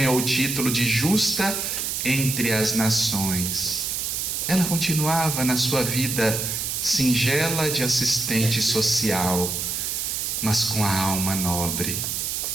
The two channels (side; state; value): right; noise; hiss, 2 dB below the sound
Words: o título de justa entre as nações. Ela continuava na sua vida singela de assistente social, mas com a alma nobre.